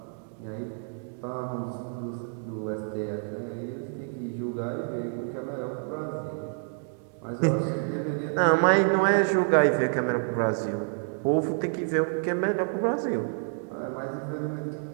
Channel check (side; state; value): left; silent; 59 dB below the other